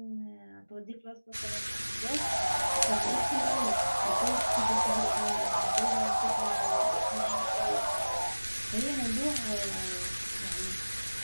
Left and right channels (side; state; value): both; inverted; correlation -1.00